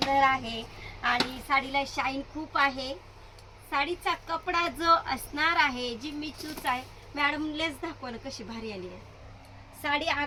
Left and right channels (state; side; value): identical; both; correlation 1.00